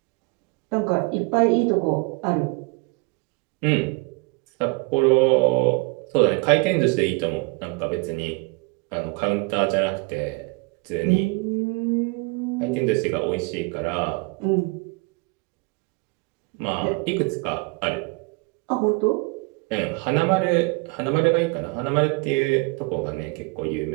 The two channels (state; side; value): quieter; left; 28.3 dB